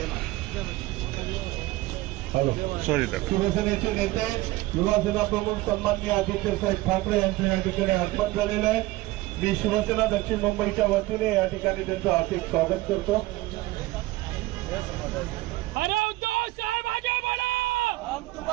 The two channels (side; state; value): left; quieter; 18.8 dB